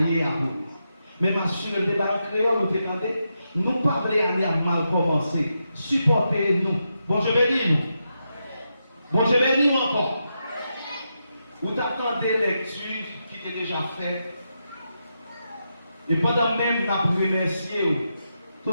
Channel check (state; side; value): inverted; both; correlation -0.85